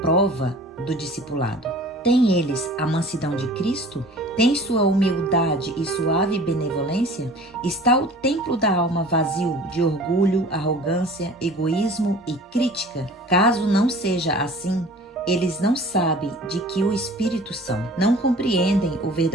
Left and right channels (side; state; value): both; normal; correlation 0.45